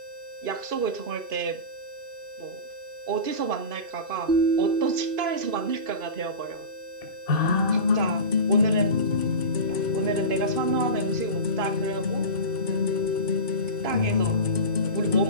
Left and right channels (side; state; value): left; late; 2.5 ms